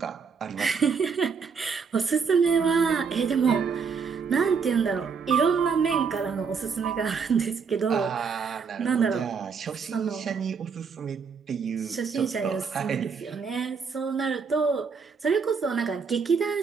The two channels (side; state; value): left; quieter; 5.7 dB